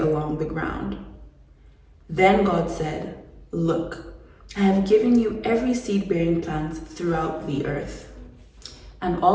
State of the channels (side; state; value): both; identical; correlation 1.00